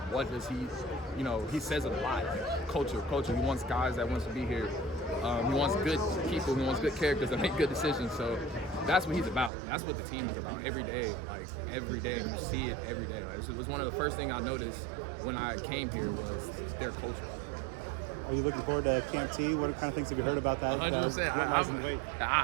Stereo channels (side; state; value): left; drops out; at 9.5 s